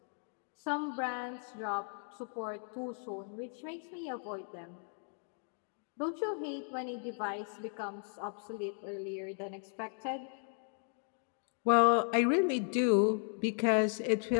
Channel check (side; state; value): right; silent; 54 dB below the other